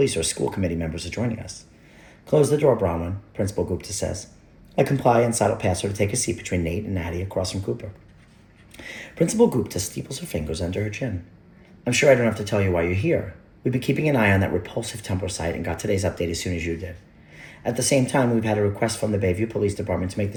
or school committee members are joining us. Close the door, Bronwyn, Principal Gupta says. I comply and sidle past her to take a seat between Nate and Natty across from Cooper. Principal Gupta steeples her fingers under her chin. I'm sure I don't have to tell you why you're here. We've been keeping an eye on that repulsive Tumblr site and got today's update as soon as you did. At the same time, we've had a request from the Bayview Police Department to make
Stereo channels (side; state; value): both; identical; correlation 1.00